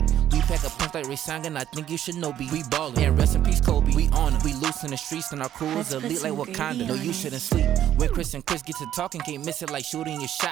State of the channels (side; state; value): left; quieter; 11.2 dB